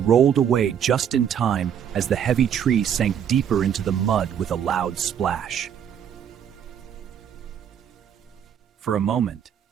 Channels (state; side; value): quieter; left; 8.7 dB